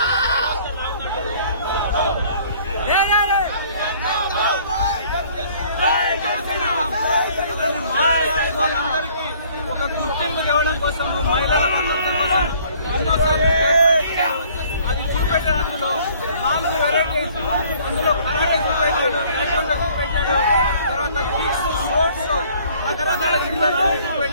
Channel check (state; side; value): inverted; both; correlation -0.57